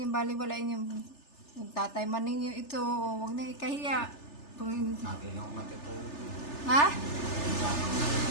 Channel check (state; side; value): late; right; 3.3 ms